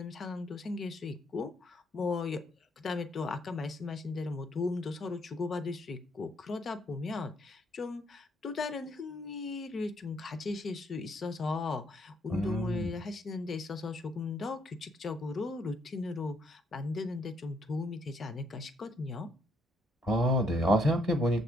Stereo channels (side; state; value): both; normal; correlation 0.71